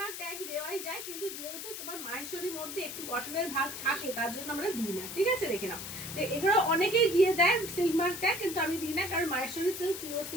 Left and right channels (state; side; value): noise; left; hiss, 8 dB below the sound